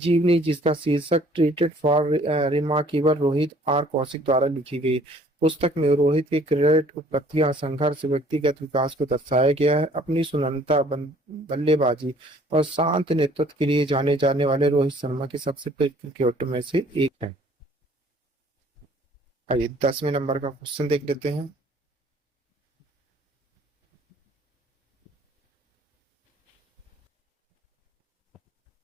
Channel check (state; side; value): normal; both; correlation 0.57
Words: जिसका शीर्षक treated for remarkable Rohit, R Kaushik द्वारा लिखी गई। पुस्तक में रोहित की क्रिकेट उपलब्धियां, संघर्ष, व्यक्तिगत विकास को दर्शाया गया है। अपनी सुनहरता, बल्लेबाजी और शांत नेतृत्व के लिए जाने जाने वाले रोहित शर्मा के सबसे प्रिय क्रिकेटर में से एक है। आइए 10वें नंबर का क्वेश्चन देख लेते हैं।